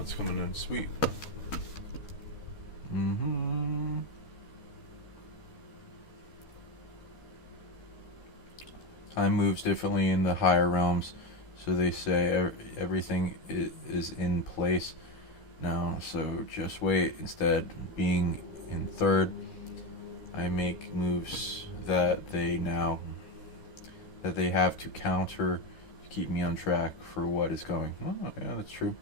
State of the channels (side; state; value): right; late; 13 ms